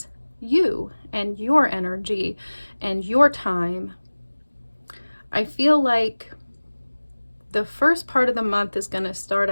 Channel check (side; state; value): both; inverted; correlation -1.00